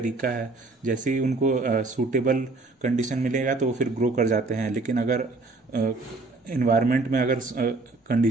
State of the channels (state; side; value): quieter; left; 3.4 dB